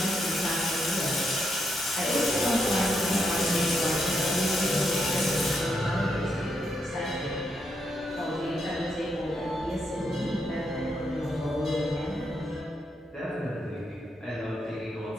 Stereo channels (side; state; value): both; normal; correlation 0.80